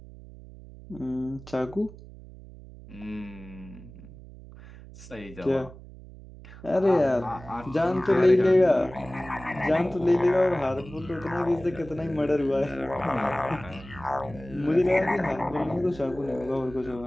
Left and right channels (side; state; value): right; noise; hum, 17 dB below the sound